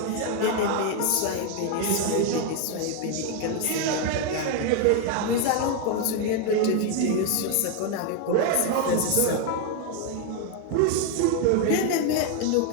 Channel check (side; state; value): both; different; correlation 0.01